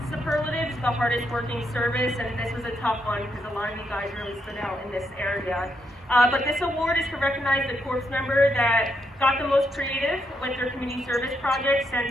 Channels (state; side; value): normal; both; correlation 0.79